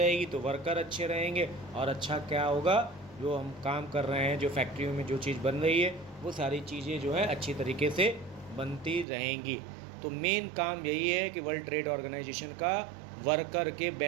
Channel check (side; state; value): left; drops out; at 9.1 s